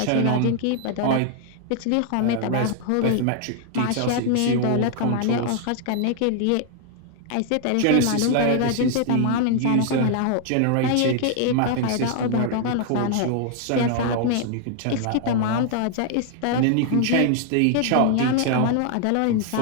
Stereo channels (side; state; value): both; different; correlation 0.00